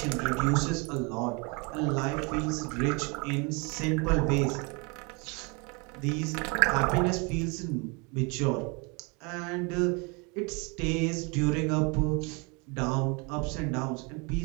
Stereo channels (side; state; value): left; quieter; 30.8 dB